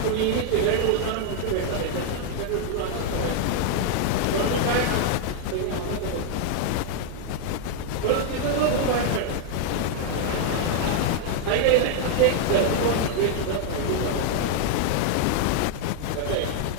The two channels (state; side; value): different; both; correlation 0.00